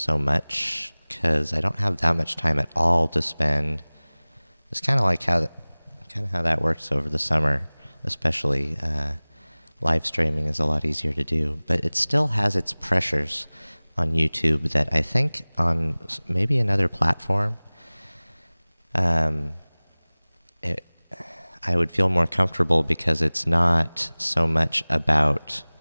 much because I don't have that much time at all to spend. It's kind of like how that works over the summer, especially. Live streaming is a lot easier to do, but it still has its pressures on YouTube that I think on maybe another platform, um, it, I would feel more comfortable because it's not so much about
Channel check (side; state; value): both; inverted; correlation -1.00